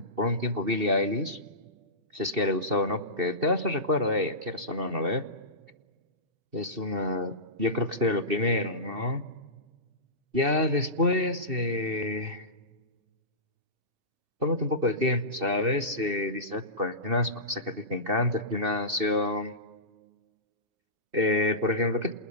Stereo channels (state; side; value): late; left; 2.7 ms